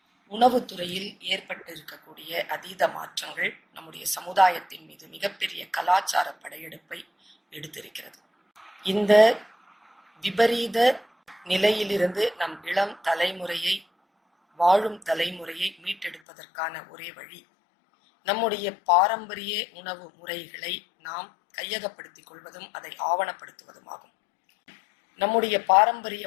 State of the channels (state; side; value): drops out; right; at 16.2 s